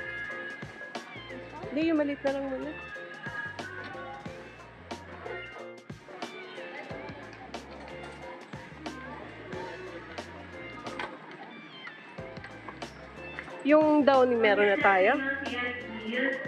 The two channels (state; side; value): identical; both; correlation 1.00